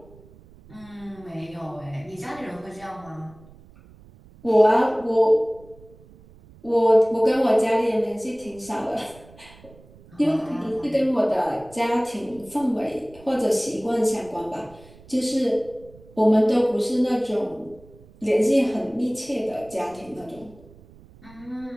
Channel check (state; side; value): noise; right; rumble, 24 dB below the sound